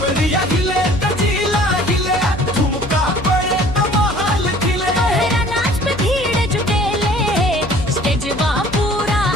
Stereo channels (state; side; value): noise; left; hum, 13 dB below the sound